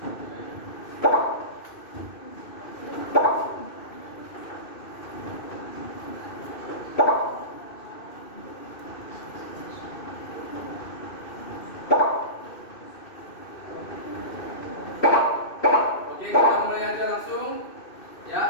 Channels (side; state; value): right; late; 2.6 ms